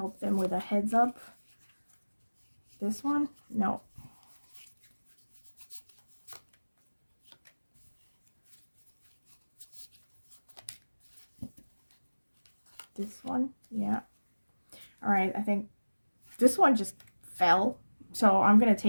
them with a heads up. This one? No. This one? Yeah. All right, I think this one just fell. So I'm going to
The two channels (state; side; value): inverted; both; correlation -1.00